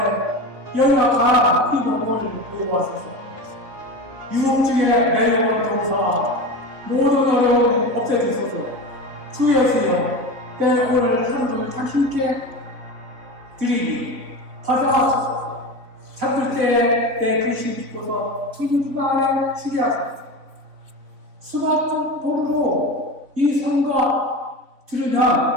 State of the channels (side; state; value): left; late; 3.7 ms